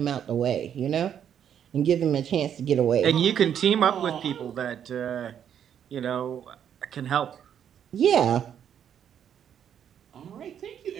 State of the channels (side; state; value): left; quieter; 9.0 dB